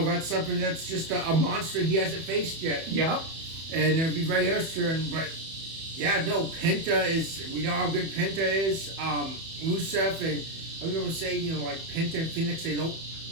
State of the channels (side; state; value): left; late; 31 ms